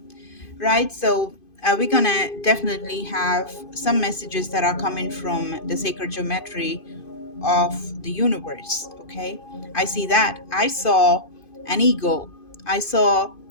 right? So we're gonna definitely have some messages that are coming from the sacred geometry of the universe. Okay, I see that. I saw an eagle. I saw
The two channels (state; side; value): late; right; 2.5 ms